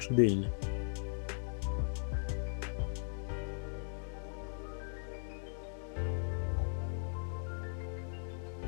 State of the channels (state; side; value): silent; right; digital silence